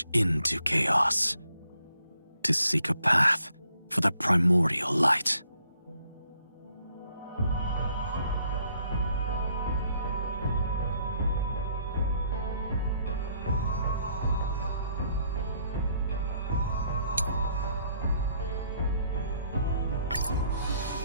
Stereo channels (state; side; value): inverted; both; correlation -0.69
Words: into chaos to seek a path for the primordial light.